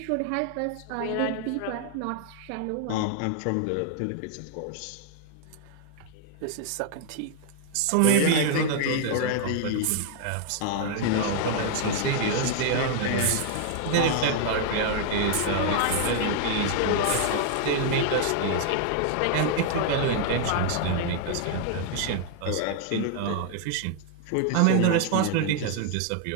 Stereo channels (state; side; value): different; both; correlation 0.00